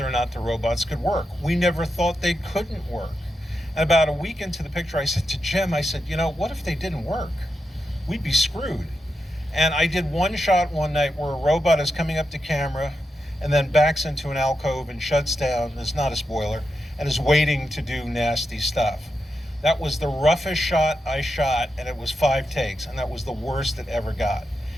or not the robots could work. We never thought they couldn't work. And about a week into the picture, I said to Jim, what if they didn't work? We'd be screwed. And I did one shot one night where a robot is coming up to camera and then backs into an alcove and shuts down, it's not a spoiler, and is waiting to do nasty stuff. That was the roughest shot I shot, and it was 5 takes, and that was the worst it ever got.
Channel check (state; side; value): normal; both; correlation 0.87